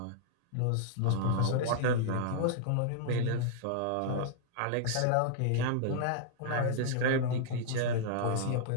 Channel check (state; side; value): different; both; correlation -0.01